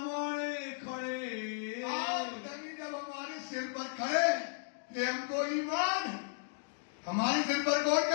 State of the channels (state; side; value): silent; right; digital silence